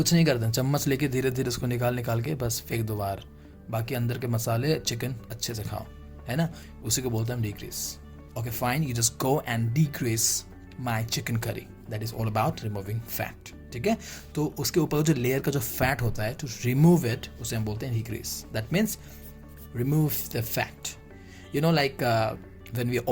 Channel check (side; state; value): both; identical; correlation 1.00